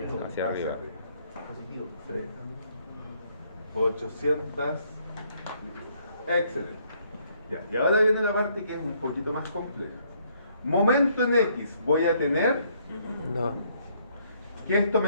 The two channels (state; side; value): inverted; both; correlation -0.68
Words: Hacia arriba. Positivo. Sí. 800. Excelente. Ya, y ahora viene la parte que es un poquito más compleja. Momento en X, voy a tener No. que esto